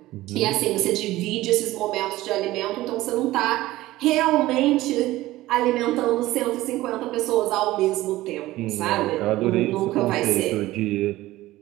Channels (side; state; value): left; quieter; 16.9 dB